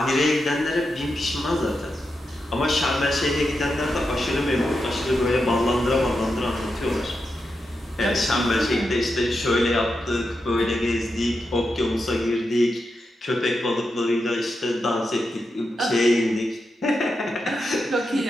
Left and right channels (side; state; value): both; normal; correlation 0.87